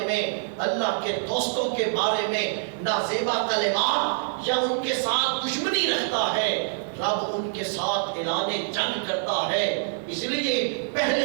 میں، اللہ کے دوستوں کے بارے میں نازیبا کلمات یا ان کے ساتھ دشمنی رکھتا ہے، رب ان کے ساتھ اعلان جنگ کرتا ہے۔ اس لیے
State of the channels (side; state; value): left; silent; digital silence